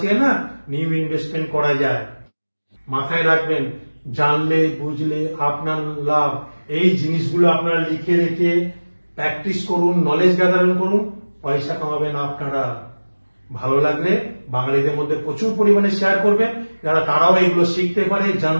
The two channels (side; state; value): both; inverted; correlation -1.00